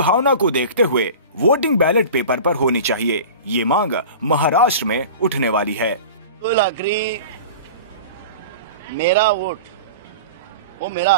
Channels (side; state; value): both; inverted; correlation -0.36